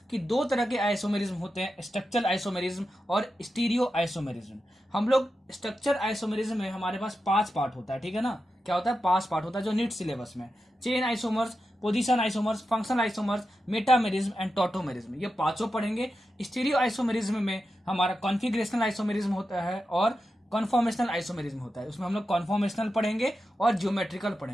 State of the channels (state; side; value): normal; both; correlation 0.90